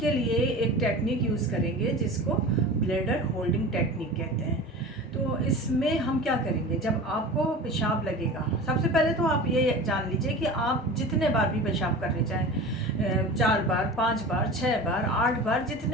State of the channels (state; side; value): normal; both; correlation 0.34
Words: लिए एक टेक्निक यूज़ करेंगे जिसको ब्लैडर होल्डिंग टेक्निक कहते हैं। तो इसमें हम क्या करेंगे, जब आपको पेशाब लगेगा, सबसे पहले तो आप ये जान लीजिए कि आप जितने बार भी पेशाब करने जाएं, 4 बार, 5 बार, 6 बार, 8 बार,